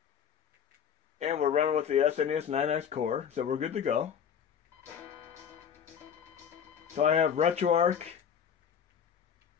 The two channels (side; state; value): right; quieter; 8.0 dB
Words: And we're running with the SNES 9X core, so we're good to go. So I have Retroarch.